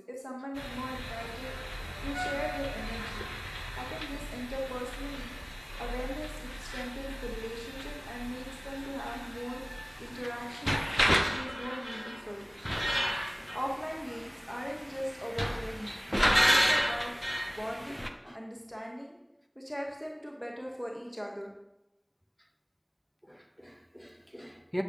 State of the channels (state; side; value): identical; both; correlation 1.00